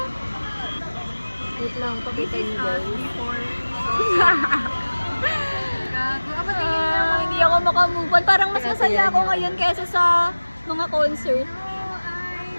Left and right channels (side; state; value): both; inverted; correlation -1.00